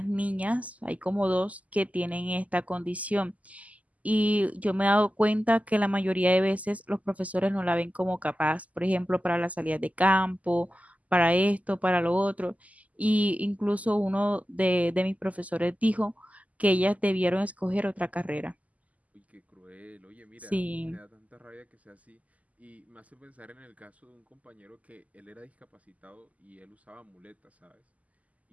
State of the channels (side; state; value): left; late; 0.073 ms